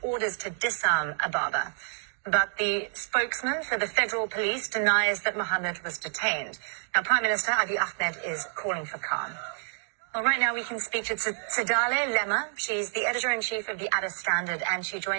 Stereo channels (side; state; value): left; silent; digital silence